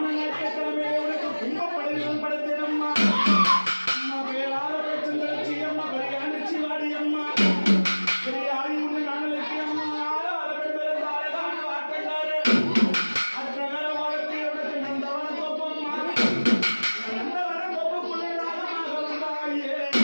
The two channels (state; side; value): inverted; both; correlation -1.00